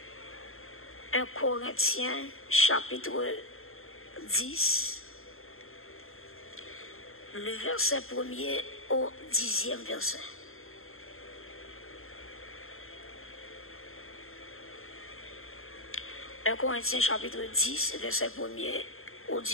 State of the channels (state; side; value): late; right; 0.61 ms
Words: 1 Corinthiens chapitre 10. Le verset 1er au 10e verset. Un Corinthiens chapitre 10, verset 1er au